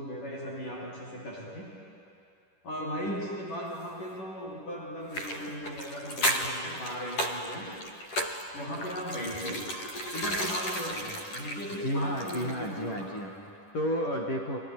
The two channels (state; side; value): late; right; 10 ms